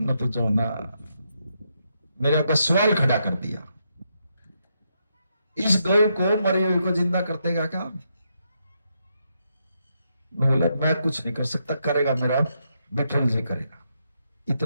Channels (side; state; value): both; inverted; correlation -0.80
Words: तो जो ना मेरे ऊपर सवाल खड़ा कर दिया। इस गौ को, मरी हुई को जिंदा कर देगा क्या? बोला मैं कुछ नहीं कर सकता, करेगा मेरा विठल जी करेगा।